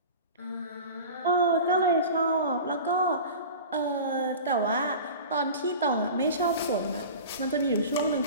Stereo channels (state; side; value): inverted; both; correlation -0.35